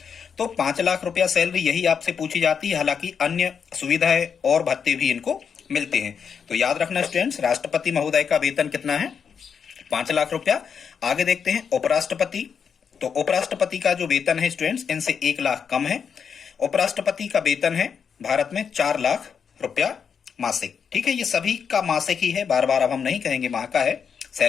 तो 5 लाख रुपया सैलरी यही आपसे पूछी जाती है। हालांकि अन्य सुविधाएं और भत्ते भी इनको मिलते हैं। तो याद रखना स्टूडेंट्स राष्ट्रपति महोदय का वेतन कितना है? 5 लाख रुपया। आगे देखते हैं उपराष्ट्रपति। तो उपराष्ट्रपति का जो वेतन है स्टूडेंट्स इनसे 1 लाख कम है। उपराष्ट्रपति का वेतन है भारत में 4 लाख रुपया मासिक, ठीक है। ये सभी का मासिक ही है, बार बार अब हम नहीं कहेंगे माह का है।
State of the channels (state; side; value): quieter; right; 6.8 dB